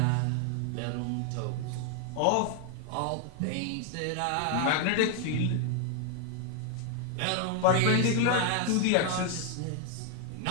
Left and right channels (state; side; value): different; both; correlation 0.00